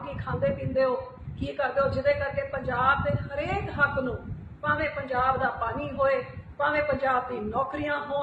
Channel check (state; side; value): identical; both; correlation 1.00